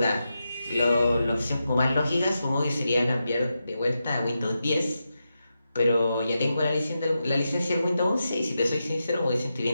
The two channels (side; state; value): both; inverted; correlation -0.89